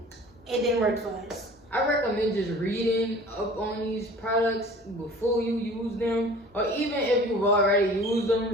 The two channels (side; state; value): both; normal; correlation 0.45